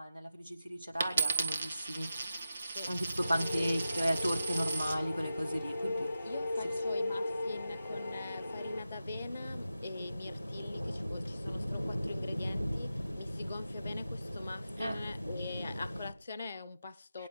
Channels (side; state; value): both; inverted; correlation -0.91